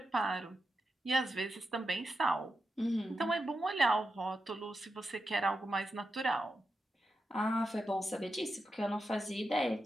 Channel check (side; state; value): both; normal; correlation 0.88